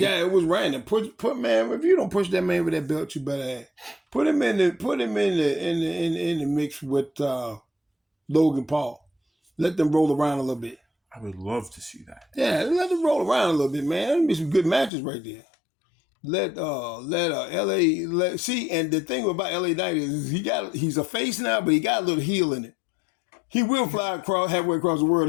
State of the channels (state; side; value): drops out; right; at 14.9 s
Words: was random. Put man, if you don't push that man with that belt, you better put him in the mix with Logan Paul. Let them roll around a little bit. I would love to see that. Yeah, let them roll around a little bit, man. That'd be some good matches right there. See, and the thing about LA Knight is he's a face now, but he got a little heel in it. He will fly halfway across the world